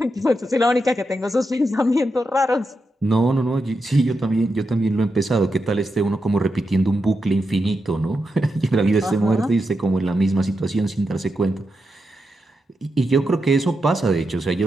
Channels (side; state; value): both; normal; correlation 0.86